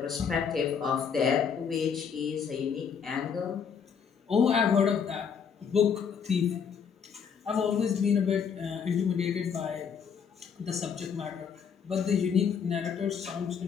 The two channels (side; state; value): right; quieter; 6.9 dB